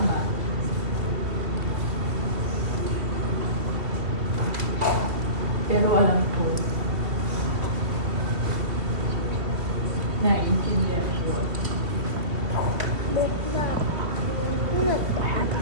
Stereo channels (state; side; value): late; left; 2.5 ms